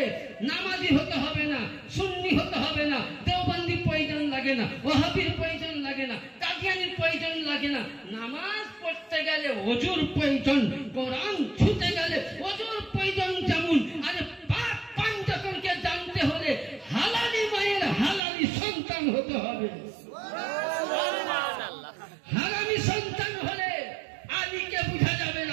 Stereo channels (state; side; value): drops out; left; at 18.2 s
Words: নামাজি হতে হবে না, সুন্নি হতে হবে না, দেওবন্দি প্রয়োজন লাগে না, ওয়াহাবির প্রয়োজন লাগে না, কাদিয়ানির প্রয়োজন লাগে না। নামাজ পড়তে গেলে ওযুর প্রয়োজন, কোরআন ছুঁতে গেলে ওযুর প্রয়োজন। যেমন আরে পাক পঞ্চমকে জানতে হলে হালালি মায়ের হালালি সন্তান হতে হবে। হারামি সন্তান হলে আলীকে বুঝা যাবে